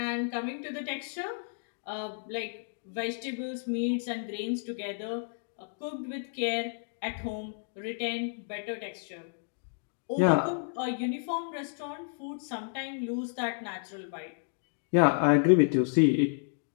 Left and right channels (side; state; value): right; silent; digital silence